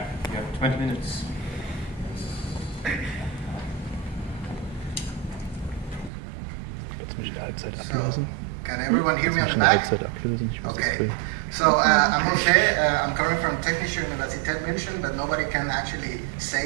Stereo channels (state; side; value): drops out; left; at 6.1 s